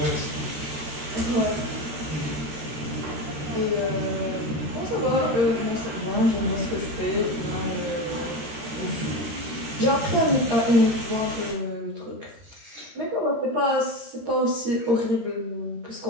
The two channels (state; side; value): late; left; 13 ms